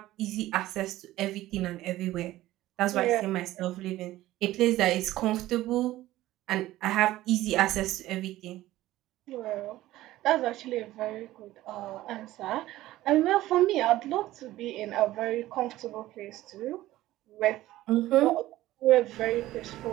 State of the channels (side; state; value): left; quieter; 15.8 dB